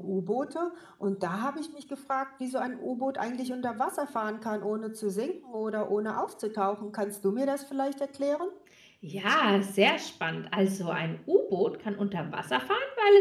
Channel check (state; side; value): identical; both; correlation 1.00